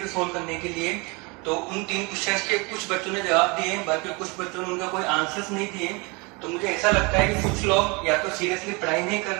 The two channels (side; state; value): left; quieter; 28.4 dB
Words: थे सोल्व करने के लिए। तो उन 3 क्वेश्चंस के कुछ बच्चों ने जवाब दिए, बाकी कुछ बच्चों ने उनका कोई आंसर्स नहीं दिए। तो मुझे ऐसा लगता है कि कुछ लोग या तो सीरियसली पढ़ाई नहीं कर